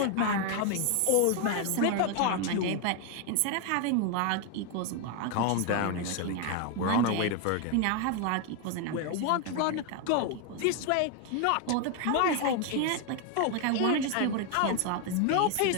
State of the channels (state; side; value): different; both; correlation 0.01